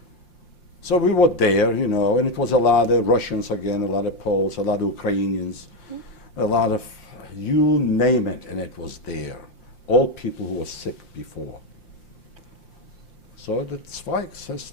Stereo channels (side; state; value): right; late; 5.7 ms